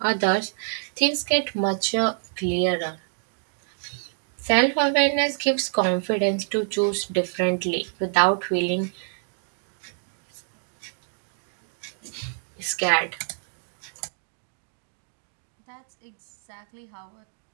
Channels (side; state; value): left; silent; digital silence